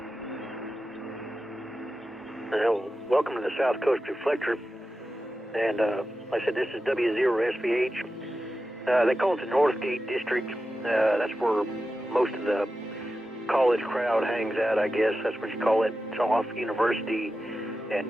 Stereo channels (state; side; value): normal; both; correlation 0.92